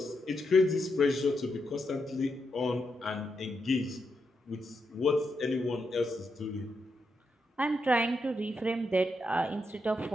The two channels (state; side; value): normal; both; correlation 0.83